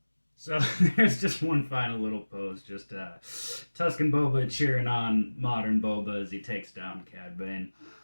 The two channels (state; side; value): inverted; both; correlation -1.00